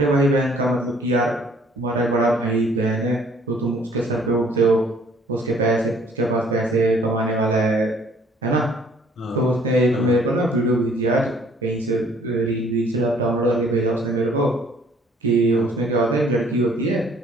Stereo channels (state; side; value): normal; both; correlation 0.59